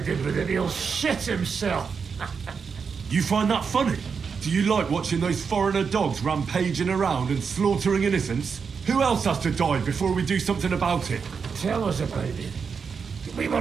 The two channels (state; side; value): quieter; left; 5.9 dB